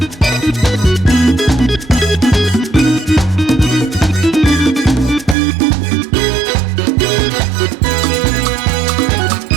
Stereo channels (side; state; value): left; drops out; at 5.4 s